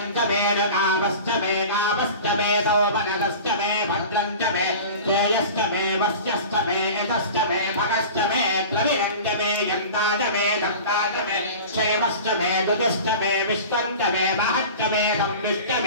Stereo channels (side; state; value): both; inverted; correlation -0.37